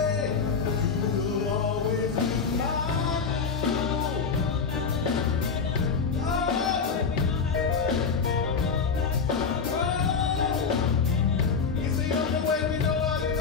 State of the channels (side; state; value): right; quieter; 5.5 dB